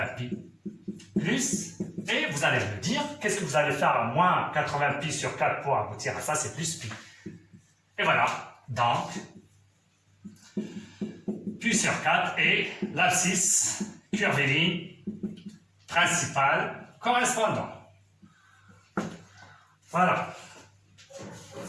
pi. Plus. Et vous allez me dire, qu'est-ce que vous allez faire à moins 80 pi sur 4 pour aboutir à ça? C'est plus pi. Et voilà. Donc, pi sur 4 et l'abscisse curviligne principale correspondant. Voilà.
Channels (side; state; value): both; identical; correlation 1.00